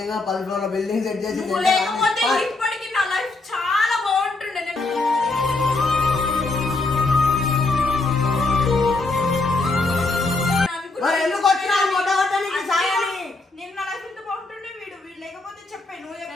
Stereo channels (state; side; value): quieter; right; 3.3 dB